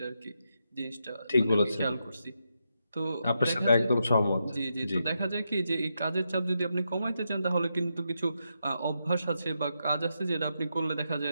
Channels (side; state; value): both; inverted; correlation -0.84